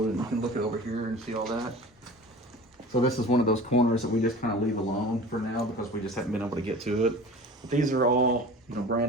and you can look at over here and see all that. So this is one of those corners that we just kind of leave alone for now because we just haven't been able to get to it. But these are all,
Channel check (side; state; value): both; normal; correlation 0.39